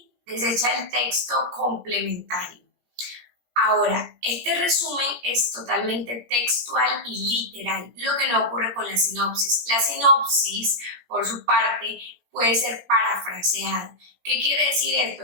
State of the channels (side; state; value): left; late; 17 ms